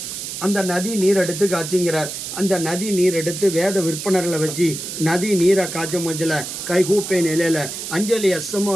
அந்த நதி நீர் எடுத்து காய்ச்சிங்கிறார். அந்த நதி நீர் எடுத்து வேத விற்பனர்களை வச்சு நதி நீரை காய்ச்சும் மஞ்சள் கைகூப்பை நிலையில் அஞ்சலி அசமாக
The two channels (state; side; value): noise; right; hiss, 7 dB below the sound